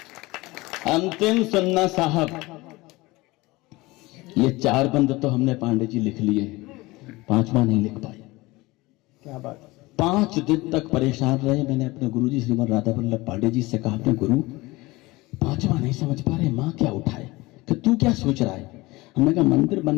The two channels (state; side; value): quieter; right; 21.4 dB